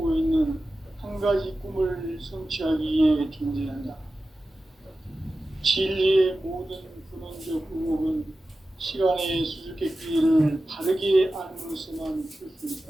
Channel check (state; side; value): normal; both; correlation 0.94